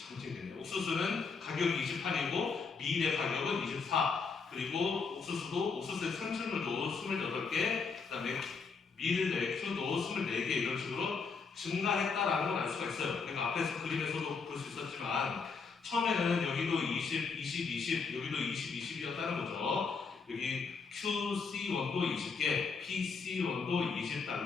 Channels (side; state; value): right; quieter; 5.0 dB